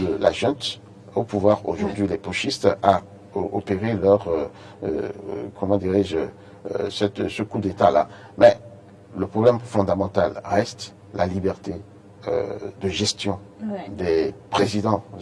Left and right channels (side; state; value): both; identical; correlation 1.00